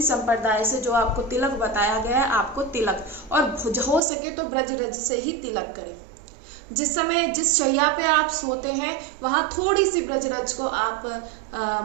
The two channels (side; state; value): left; drops out; at 4.0 s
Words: संप्रदाय से जो आपको तिलक बताया गया है, आपको तिलक, और हो सके तो ब्रज रज से ही तिलक करें। जिस समय जिस शैया पे आप सोते हैं वहां थोड़ी सी ब्रजरज को आप